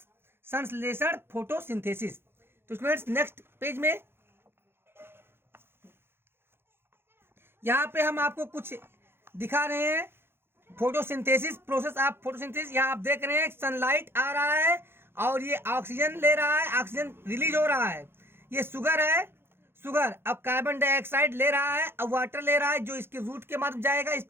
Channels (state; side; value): late; left; 0.11 ms